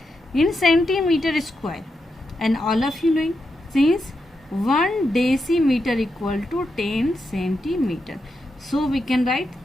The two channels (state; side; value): normal; both; correlation 0.85